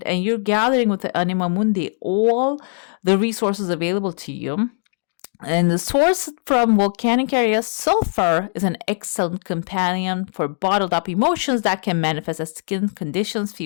and you're gathering with the Anima Mundi all the resources available to you. And the source from volcanic areas, sulfur is an excellent companion for bottled up emotions that can manifest as skin conditions,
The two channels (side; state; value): right; silent; digital silence